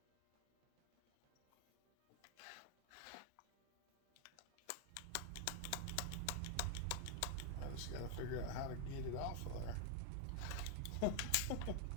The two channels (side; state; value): both; different; correlation 0.01